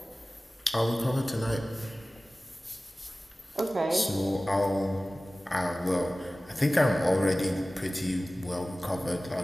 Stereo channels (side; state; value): both; normal; correlation 0.97